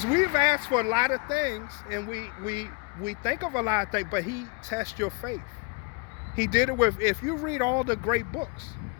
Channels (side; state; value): right; quieter; 31.6 dB